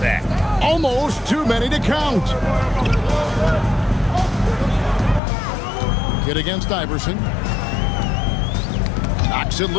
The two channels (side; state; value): right; drops out; at 5.2 s